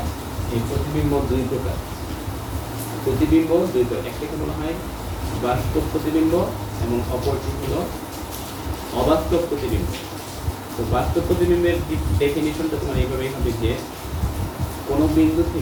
এই প্রতিবিম্ব দুই প্রকার। প্রতিবিম্ব দুই প্রকার, একটাকে বলা হয় বাস্তব প্রতিবিম্ব এবং অপরটি হলো অবাস্তব প্রতিবিম্ব। তো বাস্তব প্রতিবিম্বের ডেফিনিশনটা তোমার এইভাবেই হবে যে কোনো বিন্দু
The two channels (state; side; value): identical; both; correlation 1.00